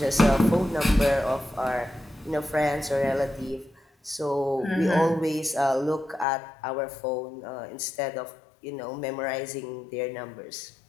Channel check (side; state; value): right; drops out; at 6.2 s